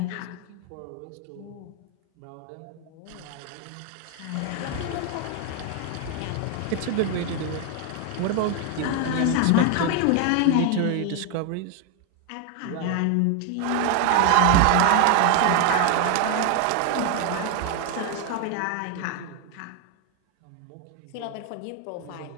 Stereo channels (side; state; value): both; different; correlation 0.01